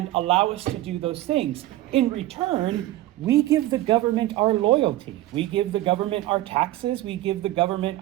allow us to do those things. In return, we give the government our loyalty. We give the government our taxes. We give the government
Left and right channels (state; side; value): quieter; left; 15.8 dB